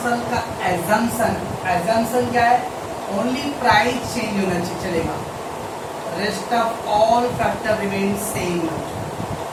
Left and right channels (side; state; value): both; identical; correlation 1.00